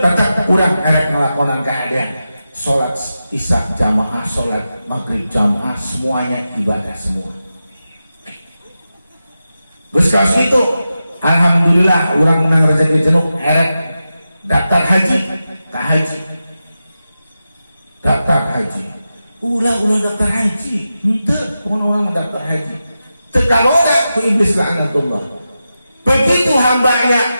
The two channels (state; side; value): inverted; both; correlation -0.91